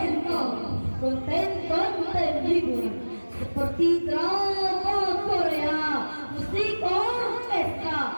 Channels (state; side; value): inverted; both; correlation -1.00